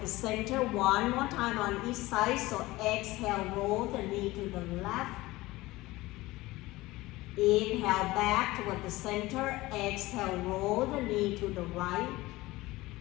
the center, one more time on each side. So exhale, roll the knee to the left. Inhale back toward the center, exhale, roll the knee to the right.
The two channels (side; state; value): right; quieter; 19.3 dB